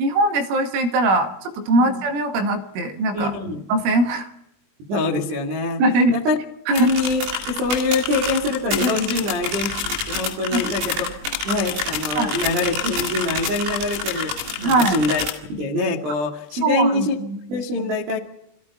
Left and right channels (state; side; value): late; left; 20 ms